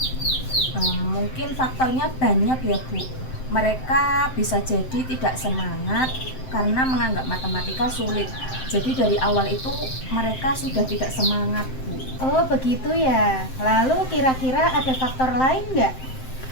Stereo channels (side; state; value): right; late; 7.7 ms